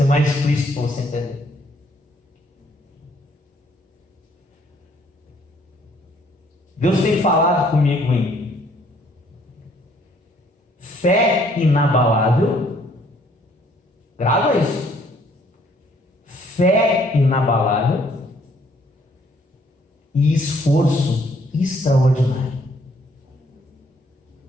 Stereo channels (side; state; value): both; normal; correlation 0.64